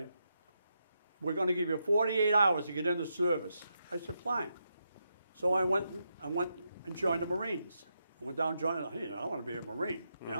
"We're going to give you 48 hours to get into service." I said, "Fine." So I went and joined the Marines. I went down and joined, hey, I want to be a Marine, you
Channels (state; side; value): inverted; both; correlation -0.83